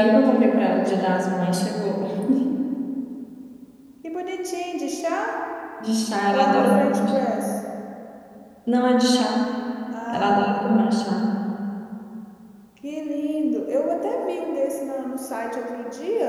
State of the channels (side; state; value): both; identical; correlation 1.00